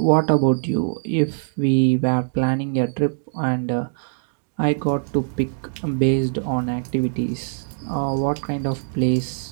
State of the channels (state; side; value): silent; left; digital silence